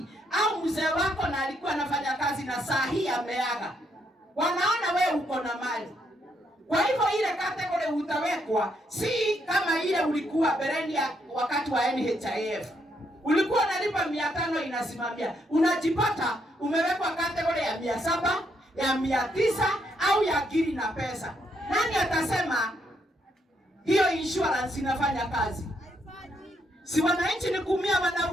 au mzee wako na alikuwa anafanya kazi na saa hii ameaga, wanaona wewe uko na mali. Kwa hivyo ile kategori utawekwa si kama ile ulikuwa bereni ya wakati wa NHIF. Ulikuwa unalipa 500 inasimamia. Unajipata umewekwa kategori ya 700, ya 900 au ya giri na pesa. Nani atasema hiyo insurance inafanya kazi? Si wananchi ni kuumia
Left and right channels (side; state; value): both; normal; correlation 0.75